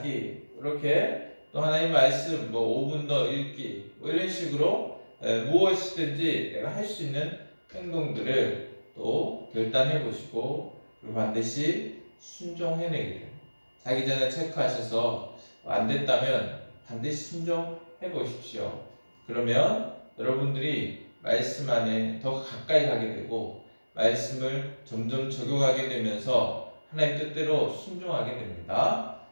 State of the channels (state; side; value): inverted; both; correlation -1.00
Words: 이렇게 또 하나님 말씀 5분 더 읽기, 이런 식으로 무엇이든지 내가 할 수 있는 행동들을 또 결단해 보시고, 그리고 반드시 순종해내기를, 자기 전에 체크하셔서 안 됐다면 반드시 순종해 보십시오. 그러면 여러분들이 말씀 안에 더 가까이 가게 되고 말씀을 점점 적용하게 되면서 하나님 뜻대로 순종하게 됩니다.